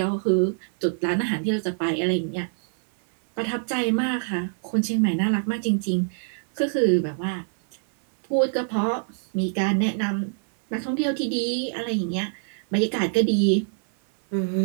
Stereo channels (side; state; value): left; silent; 61 dB below the other